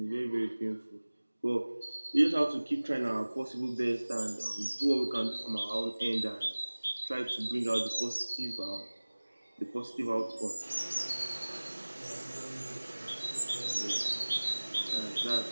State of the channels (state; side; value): inverted; both; correlation -1.00